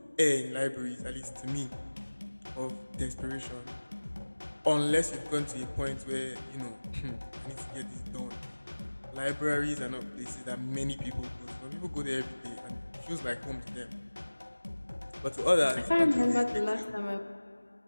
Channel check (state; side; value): inverted; both; correlation -1.00